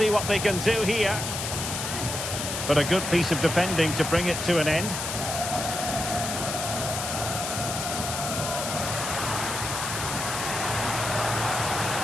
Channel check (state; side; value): noise; left; hiss, 4 dB below the sound